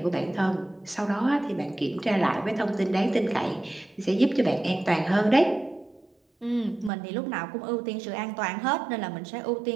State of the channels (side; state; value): left; drops out; at 6.9 s